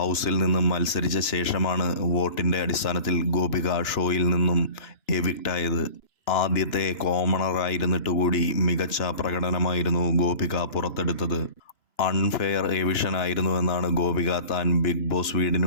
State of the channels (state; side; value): late; right; 2.9 ms